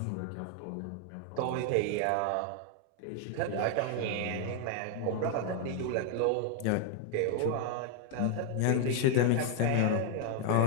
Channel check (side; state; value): both; different; correlation 0.00